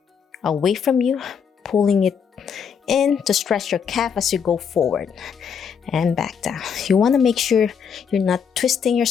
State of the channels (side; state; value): right; quieter; 6.9 dB